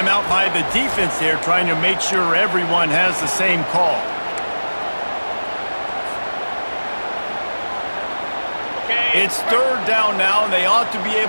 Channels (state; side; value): inverted; both; correlation -1.00